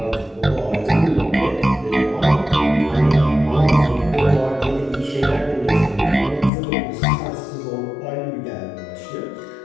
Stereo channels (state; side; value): drops out; right; at 6.5 s